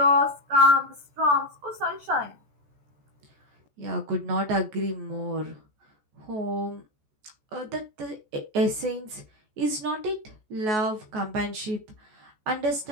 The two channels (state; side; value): late; left; 14 ms